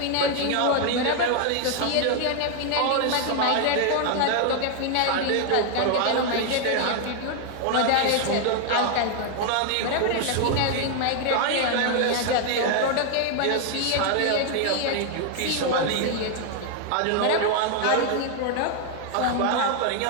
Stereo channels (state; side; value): different; both; correlation 0.00